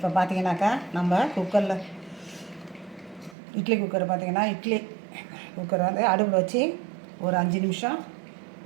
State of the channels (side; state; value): left; drops out; at 3.4 s